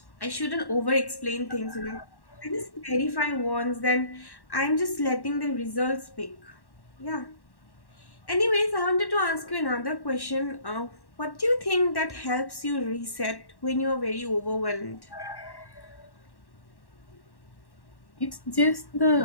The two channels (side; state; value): right; late; 1.1 ms